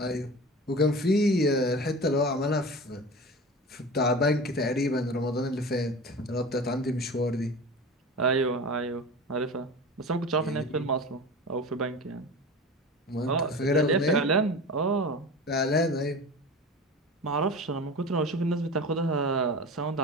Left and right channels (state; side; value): normal; both; correlation 0.33